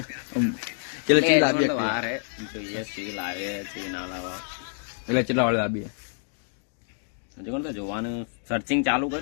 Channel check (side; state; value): right; silent; 60 dB below the other